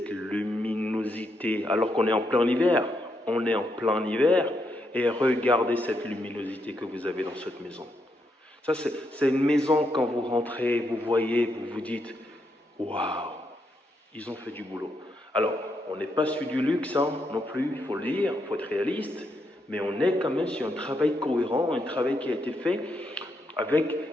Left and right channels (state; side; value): normal; both; correlation 0.80